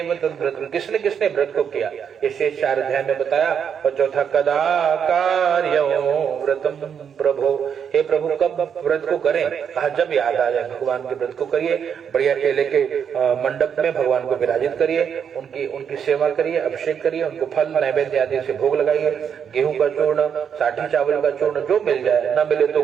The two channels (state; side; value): quieter; left; 7.6 dB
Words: तद्व्रत, किसने किसने व्रत को किया, ये शेष 4 अध्याय में बताया। और चौथा, कदा कार्यो व्रतम प्रभो, हे प्रभु कब व्रत को करें, कहा जब याद आ जाए भगवान के व्रत को करिए, बढ़िया केले के मंडप में भगवान को विराजित करिए, उनकी सेवा करिए, अभिषेक करिए, उनको फल नैवेद्य आदि से भोग लगाइए, गेहूं का चूर्ण, साठी चावल का चूर्ण जो मिल जाए, न मिले तो